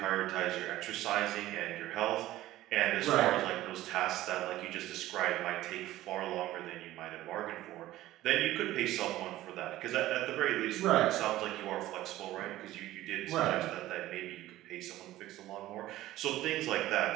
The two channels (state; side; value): quieter; left; 15.5 dB